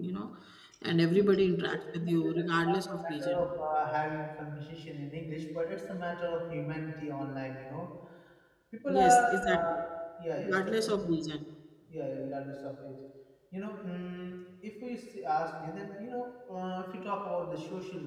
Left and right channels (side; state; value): both; identical; correlation 1.00